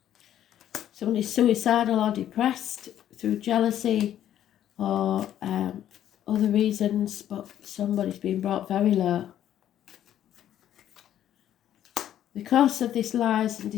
Somebody's suicidal or depressed through jealousy or other reasons, but somebody's been brought very low. Because of this lies and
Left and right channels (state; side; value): quieter; right; 11.2 dB